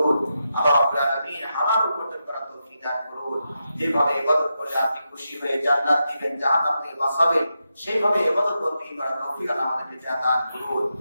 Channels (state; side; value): inverted; both; correlation -0.87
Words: আল্লাহ রাব্বুল আলামিন হালাল উপার্জন করার তৌফিক তৌফিক দান করুন। যেভাবে ইবাদত করলে আপনি খুশি হয়ে জান্নাত দিবেন, জাহান্নাম থেকে বাঁচাবেন, সেইভাবে ইবাদত বন্দী করার তৌফিক আল্লাহ আমাদেরকে দান করুন।